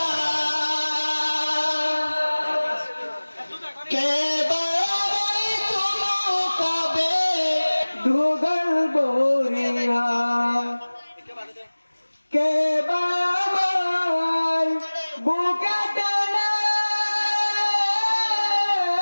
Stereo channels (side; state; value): both; inverted; correlation -1.00